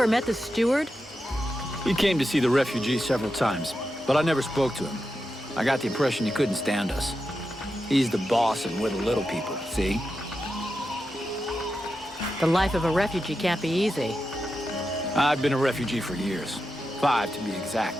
met the steward? He came to see the refugees several times, but I never spoke to him. I got the impression he couldn't stand us. He's the boss and we're the little people, see? The life of a refugee can't be easy. I've been a refugee for years. 5 to be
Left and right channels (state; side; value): normal; both; correlation 0.89